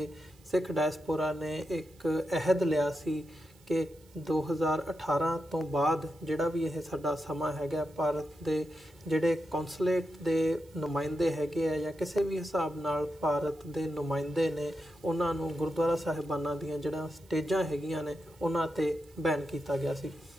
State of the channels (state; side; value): noise; right; hiss, 29 dB below the sound